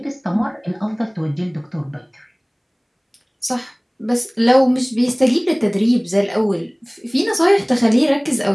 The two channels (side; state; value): both; identical; correlation 1.00